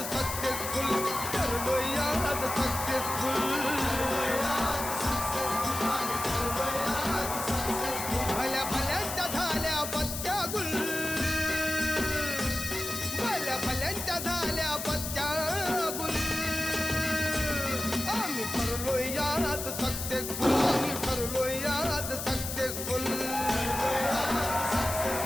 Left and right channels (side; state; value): left; noise; hiss, 5 dB below the sound